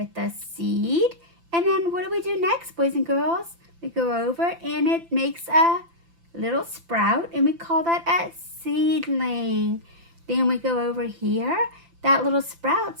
the seed. And then what do we do next, boys and girls? We go over and it makes a little sprout, and we call that a seedling. Then we go over here. That little sprout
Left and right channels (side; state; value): left; late; 5.9 ms